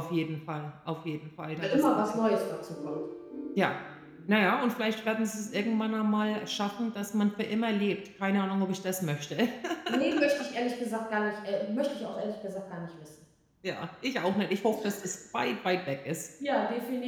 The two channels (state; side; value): identical; both; correlation 1.00